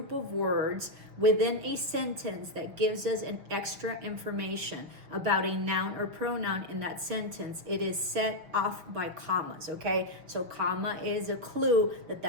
of words within a sentence that gives us an extra information about a noun or pronoun in that sentence. It is set off by commas, okay? So comma is a clue that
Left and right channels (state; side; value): late; left; 6.2 ms